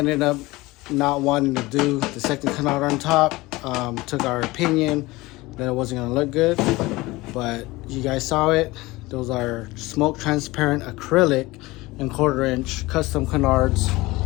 up not wanting to do the second canard on top. Took our opinion that it wasn't gonna look good, but you guys saw it. Those are smoke transparent acrylic and 1/4 inch custom canards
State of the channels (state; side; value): quieter; right; 20.7 dB